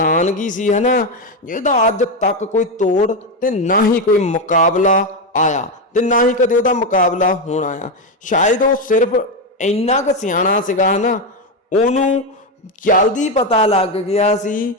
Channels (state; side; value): normal; both; correlation 0.09